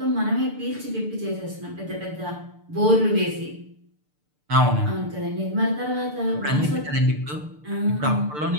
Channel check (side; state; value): left; late; 6.7 ms